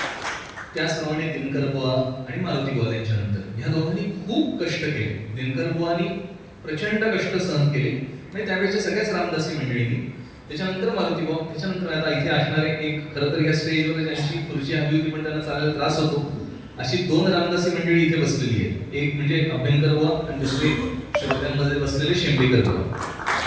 त्याचप्रमाणे दिनकर बुवा आणि मारुती बुवा यांच्यानंतर ह्या दोघांनी खूप कष्ट केले. दिनकर बुवांनी प्रचंड कष्ट सहन केले म्हणजे त्यावेळेच्या सगळ्याच रामदासी मंडळींनी. त्याच्यानंतर मारुती बुवा, त्याच्यानंतर आता इथे असणारे एक, खरं तर या स्टेजवर ज्यांची खुर्ची हवी होती पण त्यांना चालायला त्रास होतो, अशी दोन रामदासी मंडळी इथे बसलेली आहे. एक म्हणजे अभ्यंकर बुवा आणि दुसरे श्रोत्यांमध्ये बसलेले शेंबेकर बुवा.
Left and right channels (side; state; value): both; identical; correlation 1.00